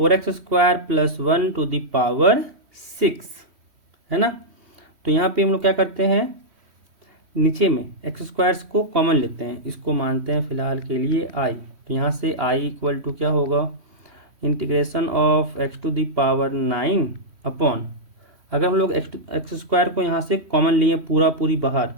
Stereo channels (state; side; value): late; left; 3.1 ms